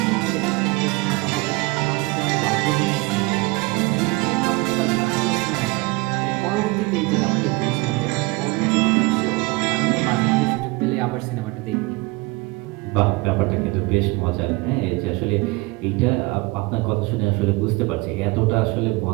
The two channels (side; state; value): left; quieter; 24.0 dB